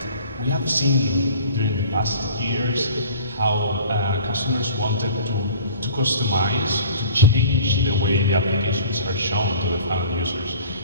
we have seen during the past years how customers wanted to customize, to change the way the applications are shown to the final users.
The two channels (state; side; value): inverted; both; correlation -0.45